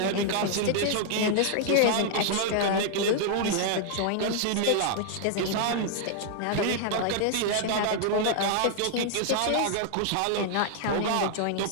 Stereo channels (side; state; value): both; different; correlation 0.00